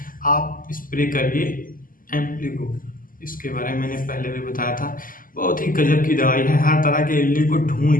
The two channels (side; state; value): right; late; 0.41 ms